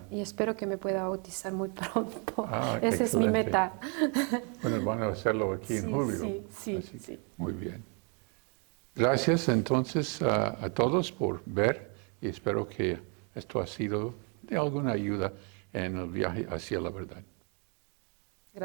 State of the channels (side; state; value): left; quieter; 36.6 dB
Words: Y espero que me pueda bautizar muy pronto. Esa es mi meta. Bueno, van a hacerlo aquí en julio. Sí. Muy bien. Gracias entonces a todos por ver y espero que esto ha sido de alguna ayuda en el viaje hacia la verdad.